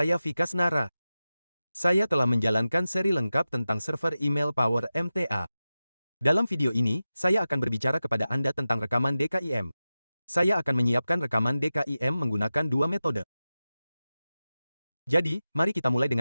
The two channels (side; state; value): both; inverted; correlation -0.94